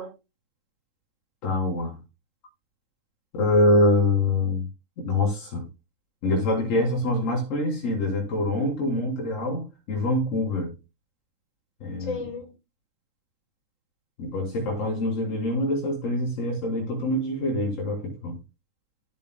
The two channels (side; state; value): right; late; 3.8 ms